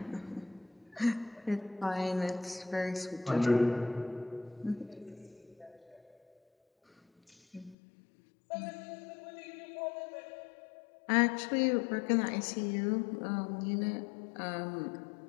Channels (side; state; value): right; drops out; at 7.8 s